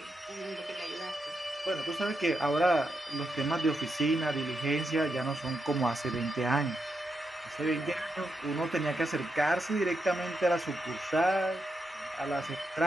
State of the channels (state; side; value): normal; both; correlation 0.84